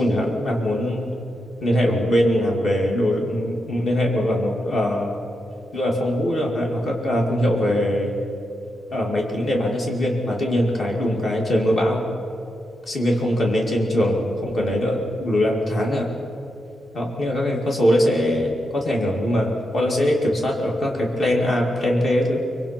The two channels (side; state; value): both; normal; correlation 0.85